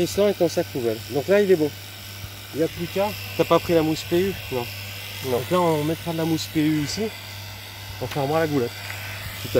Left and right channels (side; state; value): both; identical; correlation 1.00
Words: et ton sac poubelle. Donc là il est bon. Il n'y a plus qu'à. T'as pas pris la mousse PU? Non. Donc là on mettra de la mousse PU ici. On fermera la goulette. Tout